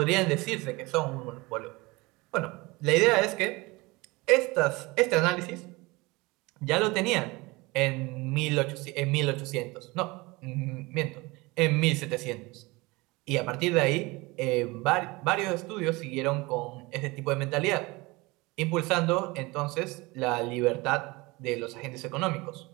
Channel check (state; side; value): quieter; left; 23.5 dB